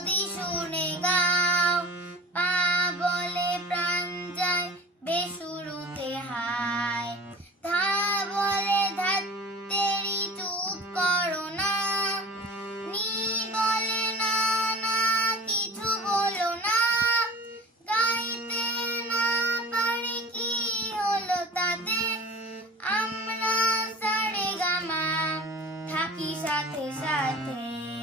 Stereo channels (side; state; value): both; normal; correlation 0.39